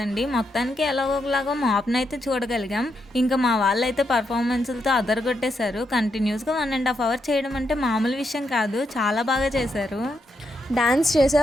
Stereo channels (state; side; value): normal; both; correlation 0.81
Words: మొత్తానికి ఎలాగోలాగో మాప్ని అయితే చూడగలిగాం. ఇంకా మా వాళ్ళైతే పర్ఫార్మెన్స్లతో అదరగొట్టేశారు. కంటిన్యూస్గా 1.5 hours చేయడం అంటే మామూలు విషయం కాదు, చాలా బాగా చేశారు. డాన్స్ చేసే